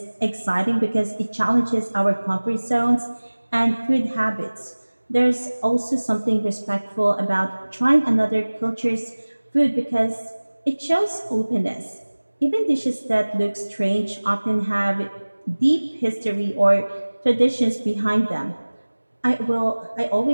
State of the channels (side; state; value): both; inverted; correlation -1.00